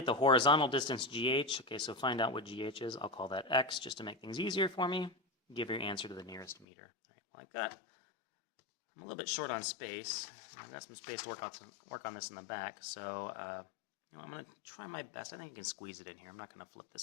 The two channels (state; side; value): drops out; right; at 6.7 s